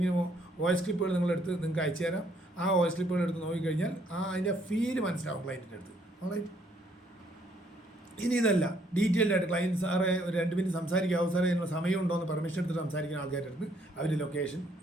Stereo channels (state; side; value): normal; both; correlation 0.67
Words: വോയിസ് ക്ലിപ്പുകൾ നിങ്ങളെടുത്ത് നിങ്ങൾക്ക് അയച്ചു തരാം. ആ വോയിസ് ക്ലിപ്പുകൾ എടുത്ത് നോക്കിക്കഴിഞ്ഞാൽ അതിൻ്റെ ഫീല് മനസ്സിലാവും ക്ലയൻറ്റിൻ്റെ അടുത്ത്. ഓൾറൈറ്റ്? ഇനി ഇതല്ല, ഡീറ്റെയിൽഡ് ആയിട്ട് ക്ലയൻറ്റ് സാറേ ഒരു 2 മിനിറ്റ് സംസാരിക്കാവോ സാറേ, അതിനുള്ള സമയമുണ്ടോ എന്ന് പെർമിഷൻ എടുത്തിട്ട് സംസാരിക്കുന്ന ആൾക്കാരുടെ അടുത്ത് അവരുടെ ലൊക്കേഷൻ